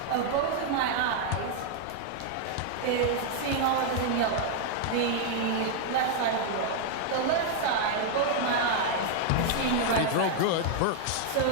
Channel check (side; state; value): both; different; correlation 0.00